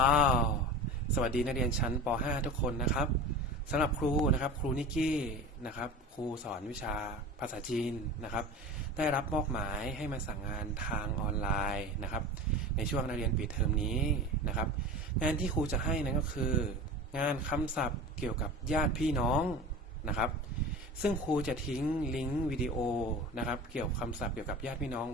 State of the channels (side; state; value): both; normal; correlation 0.33